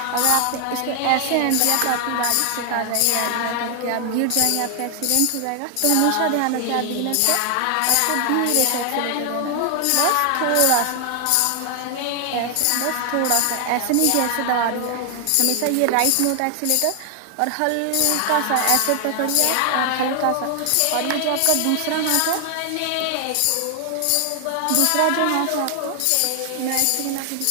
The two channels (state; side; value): different; both; correlation 0.00